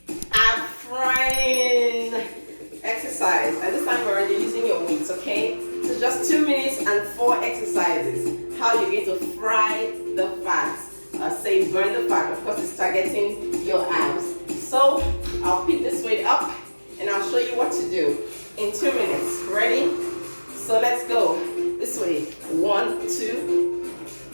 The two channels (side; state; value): both; inverted; correlation -1.00